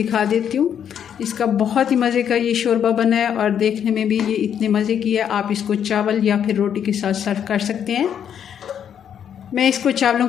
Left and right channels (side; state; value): right; quieter; 8.7 dB